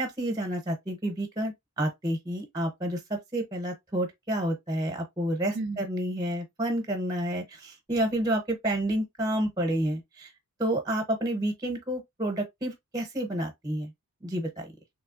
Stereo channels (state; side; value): normal; both; correlation 0.59